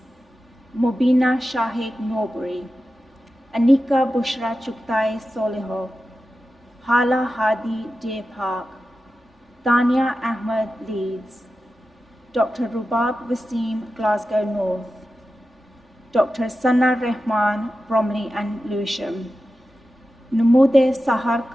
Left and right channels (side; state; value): both; normal; correlation 0.92